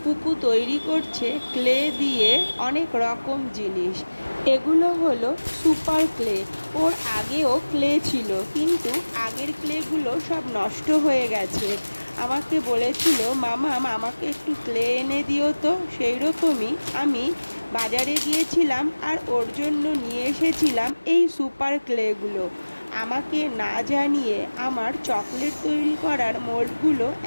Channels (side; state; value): both; inverted; correlation -1.00